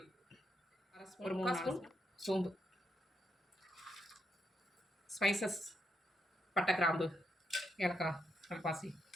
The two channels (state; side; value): normal; both; correlation 0.80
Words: ஒரு 3 ஸ்பூன் சோம்பு, ஸ்பைசஸ், பட்டை, கிராம்பு, ஏலக்காய், கல்பாசி